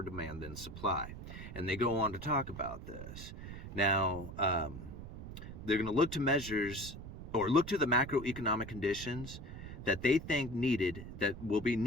demand than supply. And they go on to talk about this. Now, they're going to look to measures, or look to the macroeconomic conditions that they think that will be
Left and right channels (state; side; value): noise; right; rumble, 11 dB below the sound